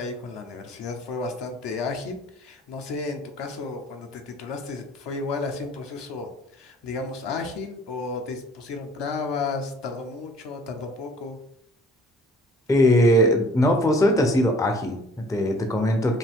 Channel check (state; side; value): normal; both; correlation 0.54